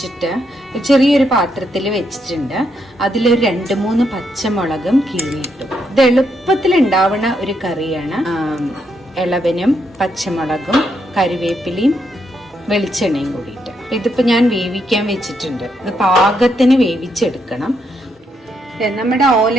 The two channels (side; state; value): both; normal; correlation 0.78